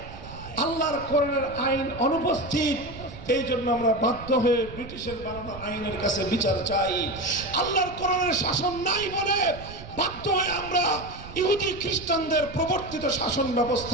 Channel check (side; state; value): right; noise; rumble, 14 dB below the sound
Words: আল্লাহর কোরআনের আইন অনুপস্থিত। এই জন্য আমরা বাধ্য হয়ে ব্রিটিশের বানানো আইনের কাছে বিচার চাই। আল্লাহর কোরআনের শাসন নাই বলে বাধ্য হয়ে আমরা ইহুদি খ্রিস্টানদের প্রবর্তিত শাসন